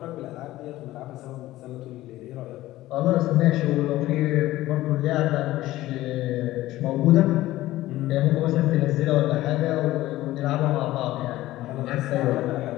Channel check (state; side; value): quieter; right; 16.2 dB